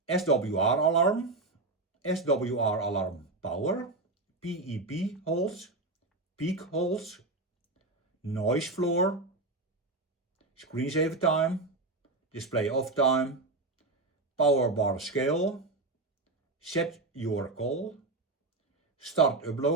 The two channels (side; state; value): left; quieter; 3.2 dB